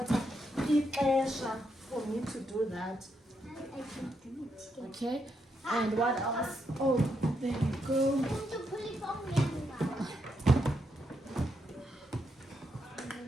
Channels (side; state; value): both; normal; correlation 0.80